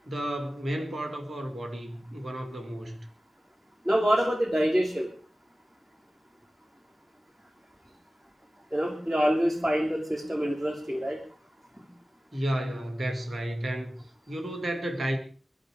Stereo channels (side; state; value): both; normal; correlation 0.96